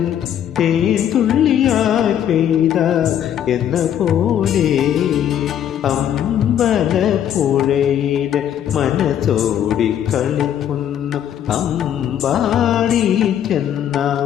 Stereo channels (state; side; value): quieter; right; 10.0 dB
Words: തേൻ തുള്ളിയായി പെയ്ത എന്ന പോലെ. അമ്പലപ്പുഴയിൽ മനസ്സോടി കളിക്കുന്നു അമ്പാടി ചെന്ന